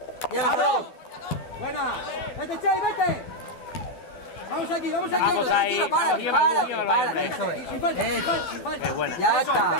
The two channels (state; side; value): late; right; 12 ms